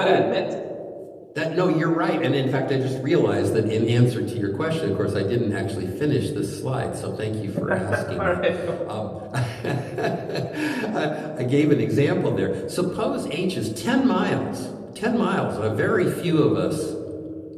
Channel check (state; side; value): identical; both; correlation 1.00